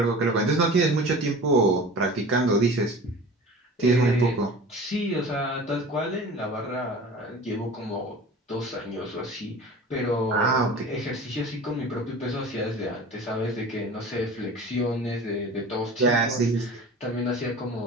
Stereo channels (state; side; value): normal; both; correlation 0.38